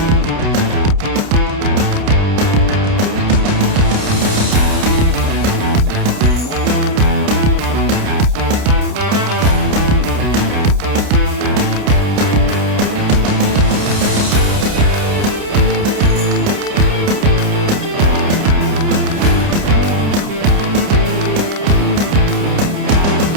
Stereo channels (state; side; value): late; left; 29 ms